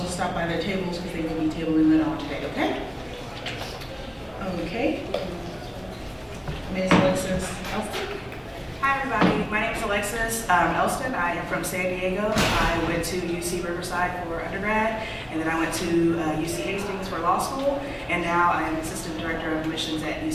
stop by their tables because they will be tabling later on today, okay? Okay. Ms. Alexis Elston. Hi everybody, my name is Alexis Elston. I am from San Diego. I went to UC Riverside for undergrad, and then I went to UC Hastings for law school, and now I am Assistant Director of Admissions at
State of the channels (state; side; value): identical; both; correlation 1.00